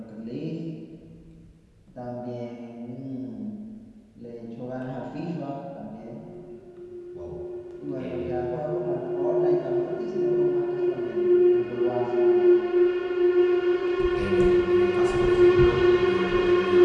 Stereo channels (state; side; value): identical; both; correlation 1.00